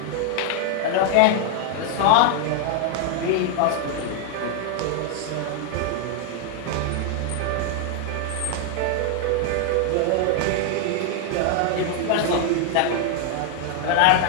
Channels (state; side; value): different; both; correlation 0.00